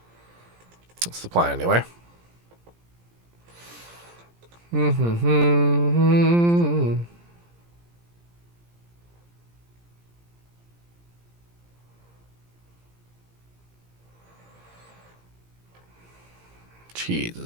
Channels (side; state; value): left; late; 17 ms